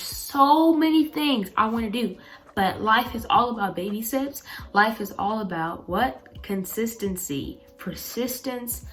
so many things I want to do, but life is all about baby steps. Life is all about what? Consistency, persistence,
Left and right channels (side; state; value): both; identical; correlation 1.00